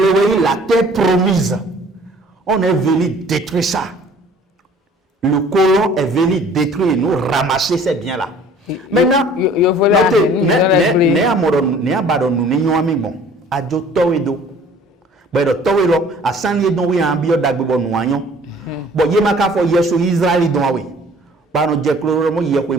weyi la terre promise on est venu détruire ça. Le colon est venu détruire et nous ramasser ces biens-là. Maintenant, ne abadon nous n'ayons ami bon. Adjo towedo. Bedo towelo asani don wi ambio dagbo no anyo. Bo ye maka fo yeso Israeli don awe. Ba no je kloro mo ye ko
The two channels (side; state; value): both; normal; correlation 0.52